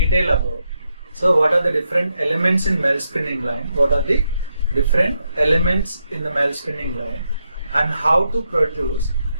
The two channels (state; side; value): inverted; both; correlation -0.82